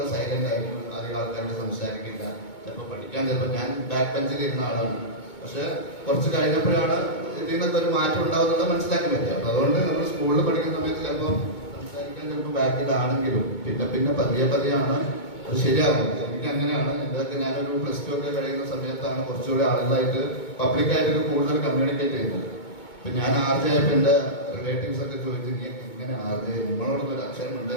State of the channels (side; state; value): right; late; 2.2 ms